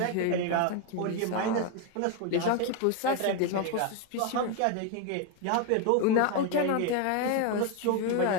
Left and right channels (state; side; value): different; both; correlation 0.01